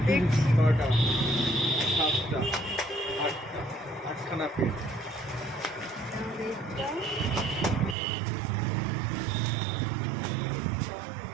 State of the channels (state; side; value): drops out; left; at 8.0 s